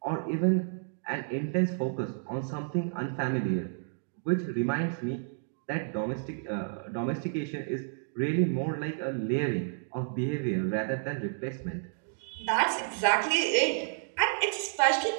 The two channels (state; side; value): silent; left; digital silence